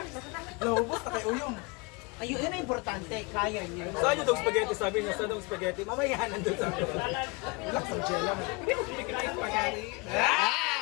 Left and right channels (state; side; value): quieter; right; 27.4 dB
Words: Lubos na kay Uyong. Ayun, yun ang importante, kaya niya. Saan yung dog spaghetti? Sabi niya, saan dog spaghetti? Mamaya nandun sa akin. Relax ang gel lang. Hindi mo kumikita yung spaghetti.